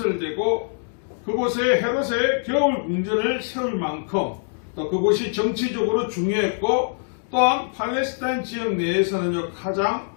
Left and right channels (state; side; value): silent; right; digital silence